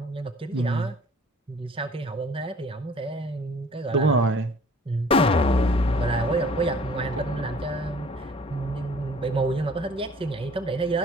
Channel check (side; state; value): both; normal; correlation 0.52